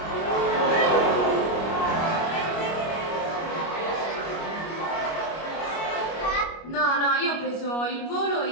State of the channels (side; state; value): right; late; 25 ms